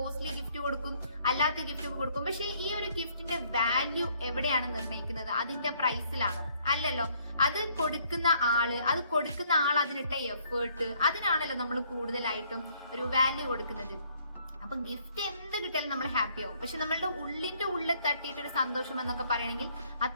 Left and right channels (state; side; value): inverted; both; correlation -0.65